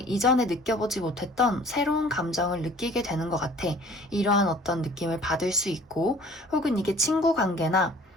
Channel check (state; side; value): normal; both; correlation 0.50